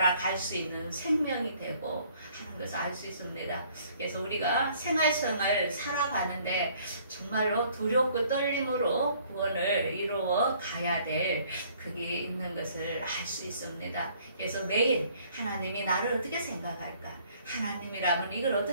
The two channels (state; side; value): inverted; both; correlation -0.60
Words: 갈 수 있는 생명이 되고 하는 것을 알 수 있습니다. 그래서 우리가 생활성을 살아가는데 정말로 두렵고 떨림으로 구원을 이루어 가야 될 그게 있는 것을 알 수 있습니다. 그래서 매일 하나님이 나를 어떻게 생각할까? 하나님이라면 이걸